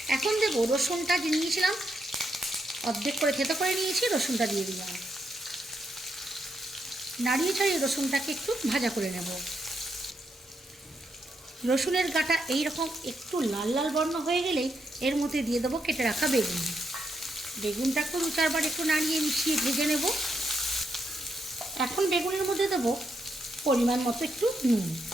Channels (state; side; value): normal; both; correlation 0.80